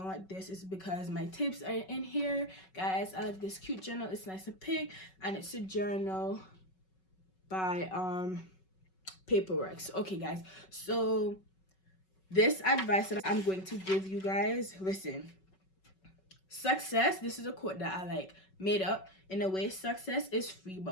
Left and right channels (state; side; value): late; right; 5.3 ms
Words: like this, it's because my tips are in here. Guys, I like this cute journal. It's nice and pink, and it's a journal by Paperworks. Okay guys, so this advice that I'm going to give you guys, listen. Success, this is a quote that I like made up. In a way, success is free,